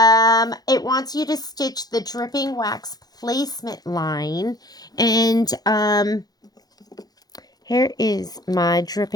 It wants you to stitch the dripping wax placement line. And here is my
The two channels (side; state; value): right; late; 0.19 ms